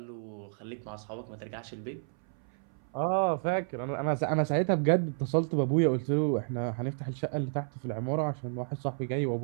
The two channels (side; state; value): left; silent; 57 dB below the other